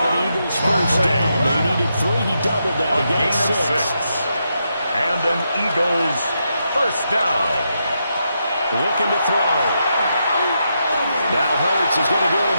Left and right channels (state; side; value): inverted; both; correlation -0.83